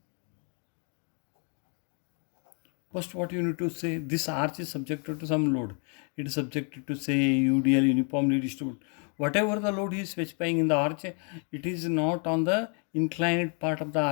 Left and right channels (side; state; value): right; quieter; 39.5 dB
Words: First, what you need to say, this arch is subjected to some load. It is subjected to say UDL, uniformly distributed. Whatever the load is specifying in the arch, it is not on the inclined part of the